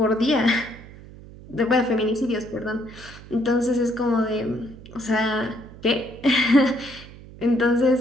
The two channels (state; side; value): noise; right; hum, 18 dB below the sound